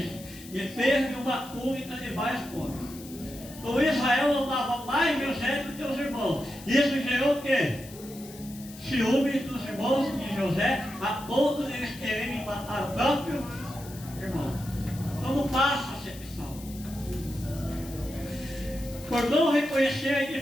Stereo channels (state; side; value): noise; left; hiss, 18 dB below the sound